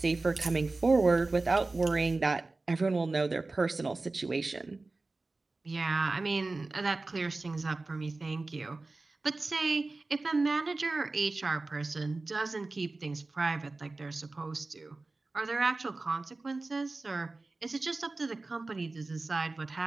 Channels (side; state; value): left; quieter; 3.4 dB